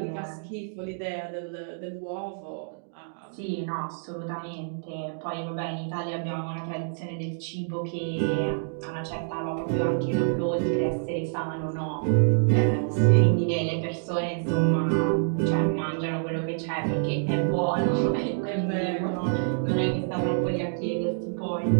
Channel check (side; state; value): left; silent; digital silence